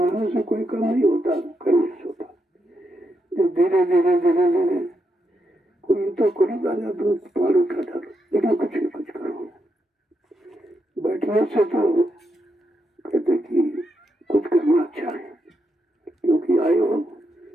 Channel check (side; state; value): both; normal; correlation 0.82